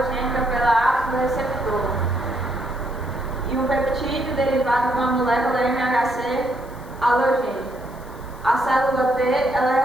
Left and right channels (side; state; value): left; noise; hiss, 26 dB below the sound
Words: pela ápice do receptor. E um peptídeo derivado de uma molécula MHC halogênica. A célula T, ela